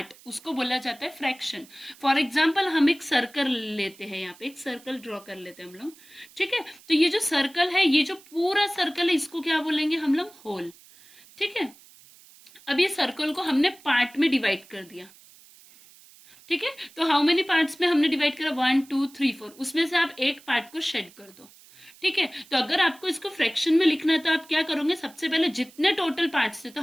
उसको बोला जाता है फ्रैक्शन। फॉर एग्जाम्पल हम एक सर्कल लेते हैं, यहाँ पे एक सर्कल ड्रॉ कर लेते हैं हम लोग। ठीक है, तो ये जो सर्कल है, ये जो पूरा सर्कल है, इसको क्या बोलेंगे हम लोग, होल। ठीक है, अब ये सर्कल को हमने पार्ट में डिवाइड कर दिया। ठीक है, तो हाउ मेनी पार्ट्स में हमने डिवाइड करा, 1 2 3 4, उसमें से आप एक पार्ट को शेड कर दो। ठीक है, तो अगर आपको इसको फ्रैक्शन में लिखना है तो आप क्या करोगे, सबसे पहले जितने टोटल पार्ट्स थे, तो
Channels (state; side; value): noise; right; hiss, 24 dB below the sound